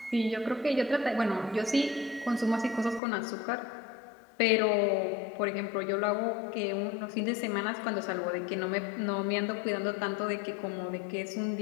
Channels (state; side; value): drops out; right; at 3.0 s